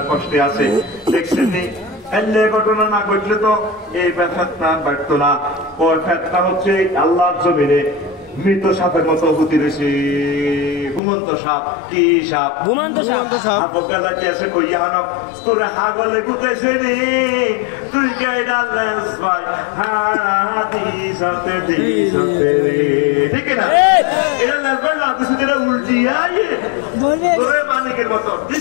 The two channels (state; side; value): drops out; right; at 11.0 s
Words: কষ্টে আছে দেখছেন নি এলে ঘটনা না ঘটলে তো এই ফেতনা বাড়তো না ওর ফেতনা হচ্ছে আল্লাহর জমিনে মৃত সাপের মতো হতে রয়েছে ঘুমন্ত সাপ কি সাপ ঘুমন্ত সাপ বকালা কি আছে কইয়া হানো তোরে হাগলে গুতেছে নি তুই গাইডা লেস ভাই হাদিসাতে দিসাতে ঠিক না এটা লেস ভাই না কিছু এটা উল্টিয়া তোরে মালিকের মতো